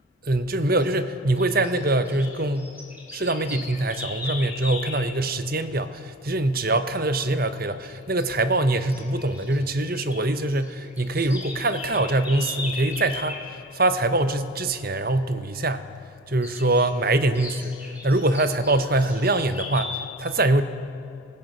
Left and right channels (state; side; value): normal; both; correlation 0.38